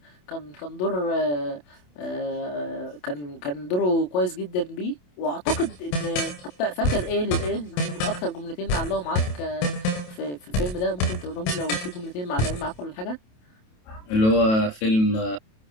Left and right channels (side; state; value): right; late; 27 ms